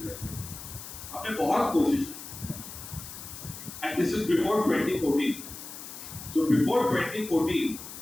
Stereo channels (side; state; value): left; noise; hiss, 12 dB below the sound